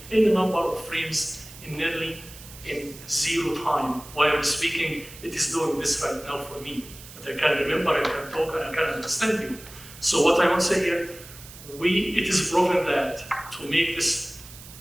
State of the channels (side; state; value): right; noise; hiss, 17 dB below the sound